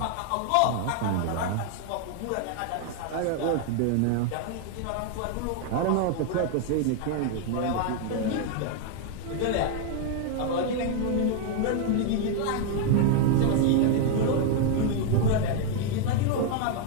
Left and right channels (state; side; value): different; both; correlation 0.00